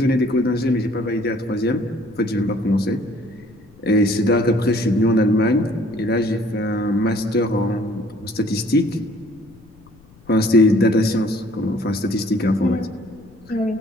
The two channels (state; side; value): noise; left; rumble, 26 dB below the sound